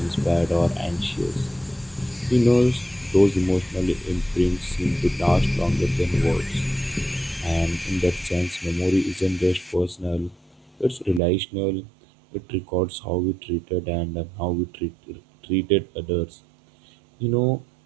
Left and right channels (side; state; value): left; drops out; at 11.2 s